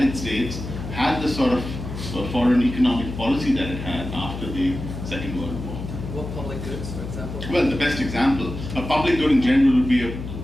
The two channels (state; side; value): noise; left; hum, 8 dB below the sound